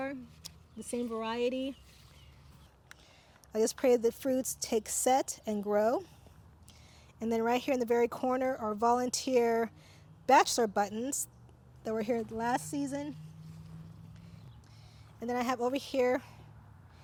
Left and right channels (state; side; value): identical; both; correlation 1.00